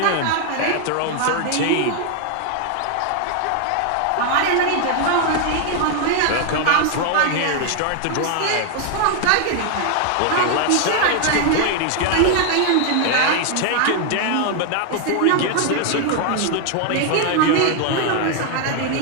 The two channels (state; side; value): different; both; correlation 0.00